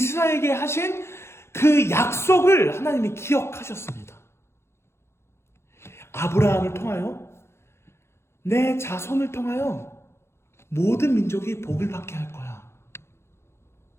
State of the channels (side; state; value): right; late; 0.12 ms